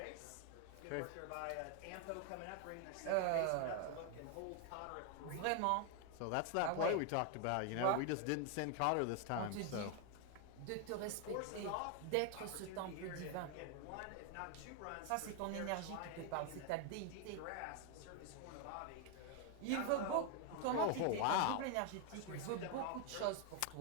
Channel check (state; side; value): different; both; correlation 0.01